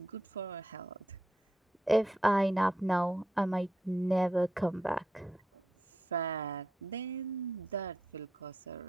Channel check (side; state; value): both; normal; correlation 0.83